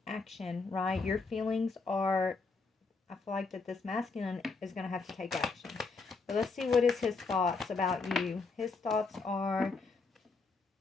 action, right? Your feelings are, I feel like that this masculine is going to have to take action. But let's see, what is his thoughts about you? His thoughts are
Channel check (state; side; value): quieter; right; 4.2 dB